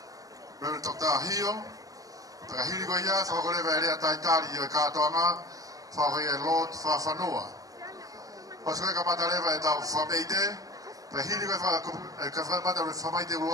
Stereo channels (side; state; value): left; late; 0.17 ms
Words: Reverend Dr. Hio. Pakahiri koe ia, whahoko rewa e rea taitari i o Katoanga, whahoko ia e Lord Whawhanua. Pas koe Kamata rewa e tau whameite, pakahiri koe ka whamata re whamaite